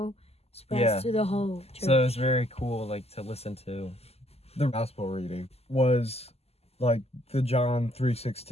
spreads Yeah. to the whole church. So it's very cool, like to listen to. The gospel reading was like the John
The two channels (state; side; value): late; right; 0.29 ms